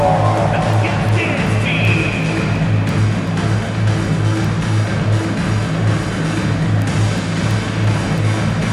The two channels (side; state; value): both; identical; correlation 1.00